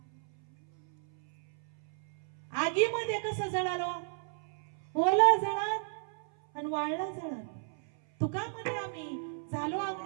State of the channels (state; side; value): silent; left; 55 dB below the other